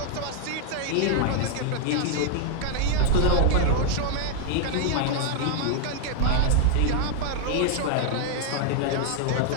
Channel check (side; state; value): both; different; correlation 0.00